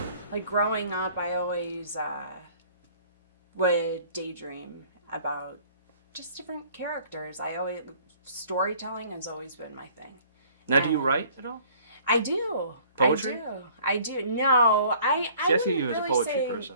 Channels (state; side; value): inverted; both; correlation -0.55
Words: growing up, I always would daydream about just different characters. Storytelling has always been my thing. Now, do you write at all? I do. Poetry? I do. No, I see you wouldn't as a really poetry say person.